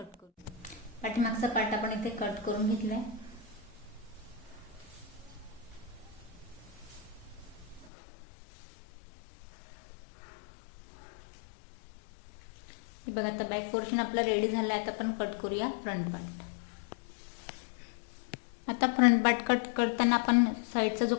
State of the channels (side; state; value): right; drops out; at 7.9 s